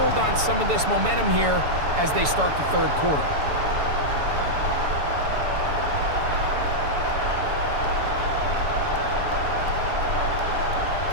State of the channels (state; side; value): late; left; 7.0 ms